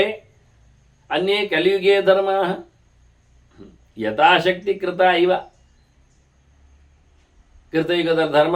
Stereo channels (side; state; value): both; identical; correlation 1.00